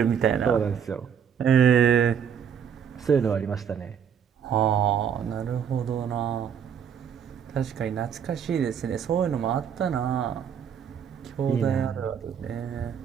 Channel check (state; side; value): quieter; left; 7.9 dB